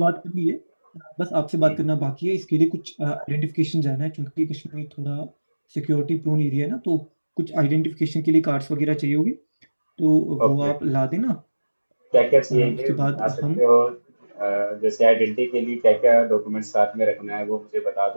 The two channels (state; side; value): inverted; both; correlation -1.00